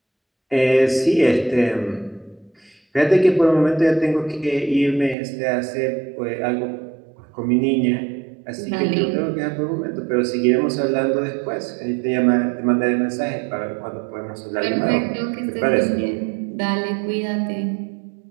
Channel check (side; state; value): left; drops out; at 5.2 s